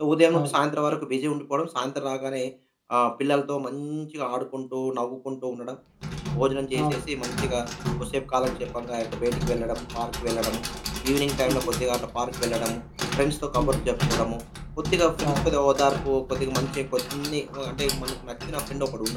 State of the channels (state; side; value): identical; both; correlation 1.00